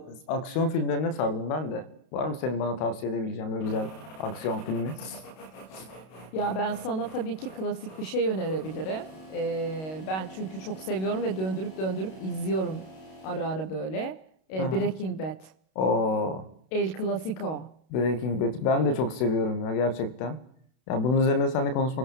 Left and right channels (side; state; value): right; late; 32 ms